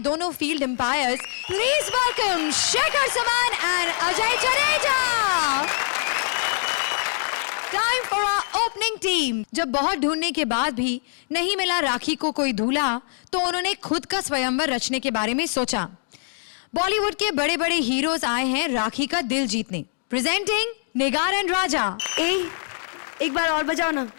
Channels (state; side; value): silent; right; digital silence